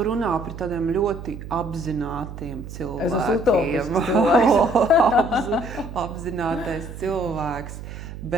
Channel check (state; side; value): noise; right; hum, 11 dB below the sound